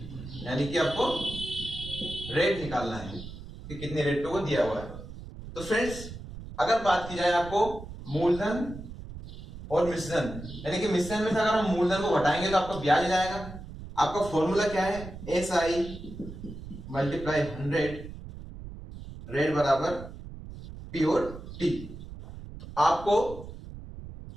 यानी कि आपको रेट निकालना है कि कितने रेट पे वो दिया हुआ है। तो फ्रेंड्स, अगर बात की जाए आपको मूलधन और मिश्रण, यानी कि मिश्रण में से अगर हम मूलधन को घटाएंगे तो आपका ब्याज जाएगा। आपका फॉर्मूला क्या है, SI मल्टीप्लाई 100 रेट बराबर P और T। आपको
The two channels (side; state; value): right; noise; rumble, 12 dB below the sound